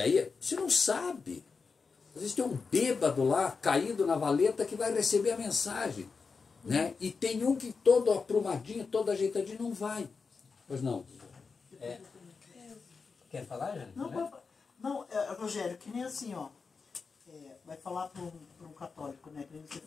você não sabe. Às vezes tem um bêbado lá, caído na valeta, que vai receber a mensagem. Né? E tem um que todo aprumadinho, todo ajeitadinho, não vai. Pois não. Quer falar, Jane? Não, Rogério, que nem assim, ó. Vai falar para um católico, né? Que você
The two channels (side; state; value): right; quieter; 4.9 dB